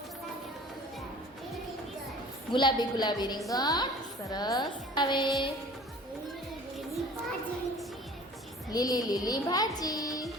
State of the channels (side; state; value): both; normal; correlation 0.46